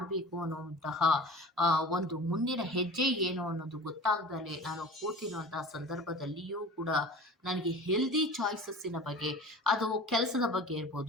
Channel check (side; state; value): both; normal; correlation 0.38